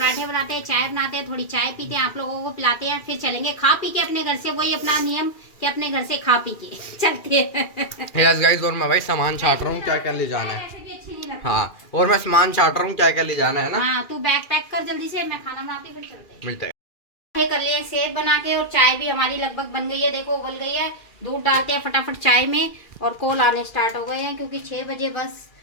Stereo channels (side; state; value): right; late; 2.4 ms